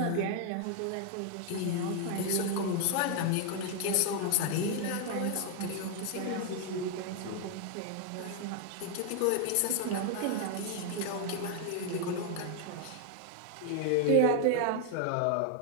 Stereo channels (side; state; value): both; different; correlation 0.00